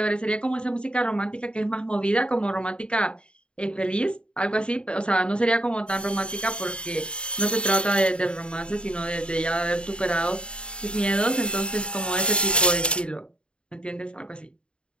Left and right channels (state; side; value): late; right; 0.054 ms